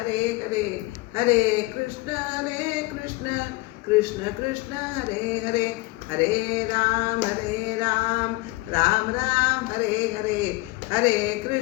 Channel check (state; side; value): quieter; right; 21.7 dB